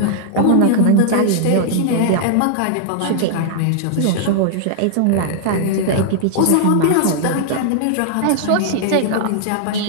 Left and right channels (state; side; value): different; both; correlation -0.01